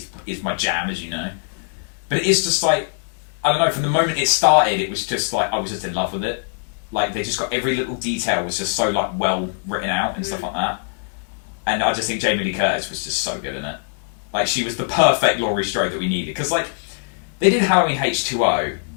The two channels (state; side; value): silent; right; digital silence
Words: my jam, as you know. But it is just like I don't know. From the moment it started, it was just like I was just in love with it. Like they just got every little detail was just so like well written out and stuff like that. And I just think Jamie Lee Curtis was just so good in it. Like, she was the perfect Laurie Strode that we needed. Because, like, they did Halloween H2O,